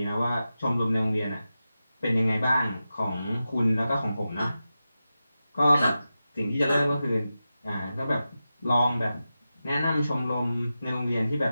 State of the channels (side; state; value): both; inverted; correlation -0.92